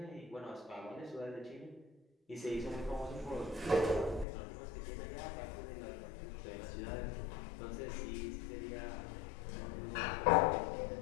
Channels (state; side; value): drops out; right; at 4.2 s